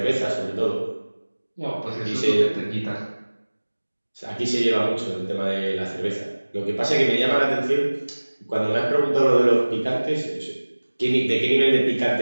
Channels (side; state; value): both; inverted; correlation -1.00